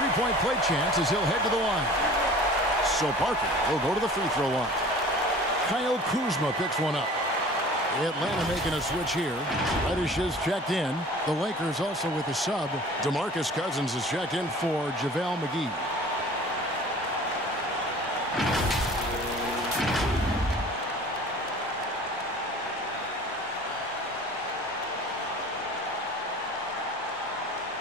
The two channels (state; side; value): normal; both; correlation 0.44